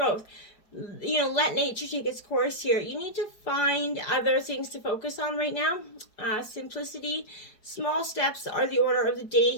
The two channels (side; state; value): right; late; 4.7 ms